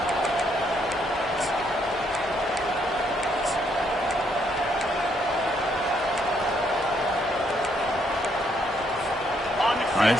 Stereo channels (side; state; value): both; normal; correlation 0.72